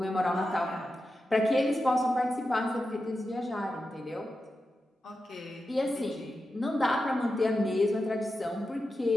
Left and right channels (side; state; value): both; normal; correlation 0.90